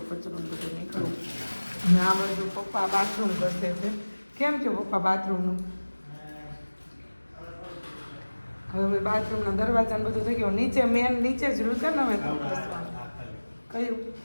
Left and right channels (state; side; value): inverted; both; correlation -1.00